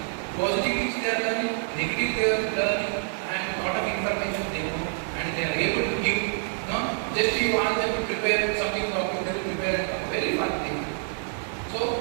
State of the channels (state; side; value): silent; left; 56 dB below the other